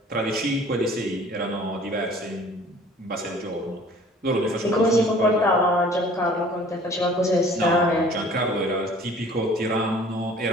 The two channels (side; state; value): both; normal; correlation 0.51